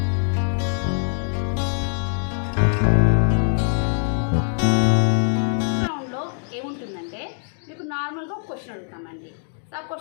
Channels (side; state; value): right; silent; digital silence